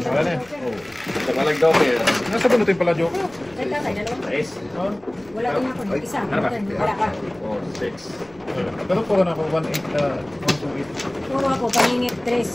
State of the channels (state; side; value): noise; left; rumble, 28 dB below the sound